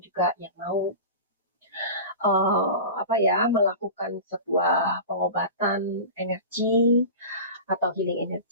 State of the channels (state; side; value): inverted; both; correlation -0.32